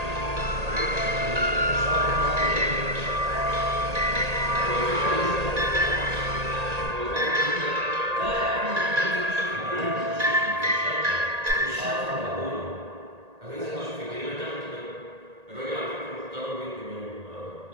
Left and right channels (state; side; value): late; left; 1.8 ms